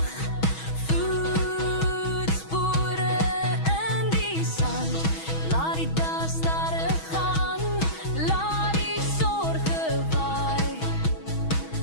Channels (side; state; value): right; late; 6.2 ms